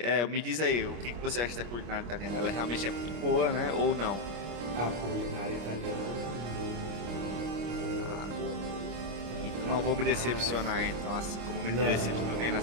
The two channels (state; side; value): late; left; 25 ms